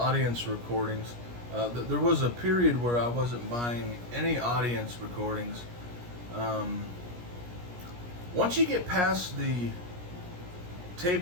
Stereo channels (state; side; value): late; left; 17 ms